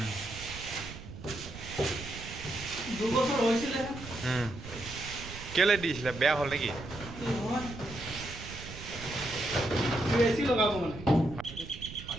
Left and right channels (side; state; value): right; noise; rumble, 12 dB below the sound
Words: দুবছৰ হৈছিলে কেলে দিছিলে বেয়া হ'ল নেকি এচি লগাব মানে